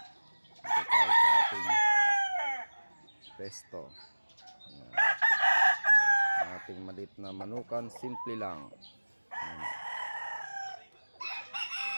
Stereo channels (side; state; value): both; inverted; correlation -1.00